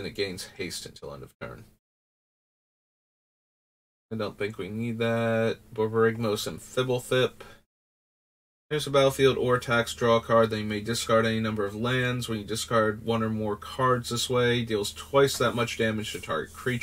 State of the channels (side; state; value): both; identical; correlation 1.00